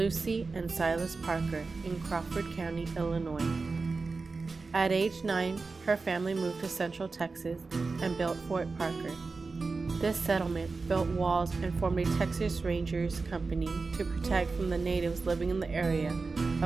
and Silas Parker in Crawford County, Illinois. At age 9, her family moved to Central Texas and built Fort Parker. This settlement built walls and formed a Texas Rangers company to protect from the natives living in the area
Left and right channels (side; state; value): left; quieter; 4.1 dB